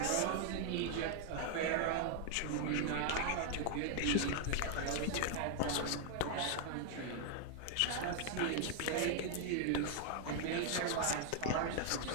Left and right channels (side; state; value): both; different; correlation 0.00